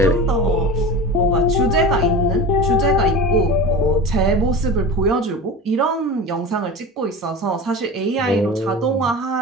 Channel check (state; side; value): normal; both; correlation 0.32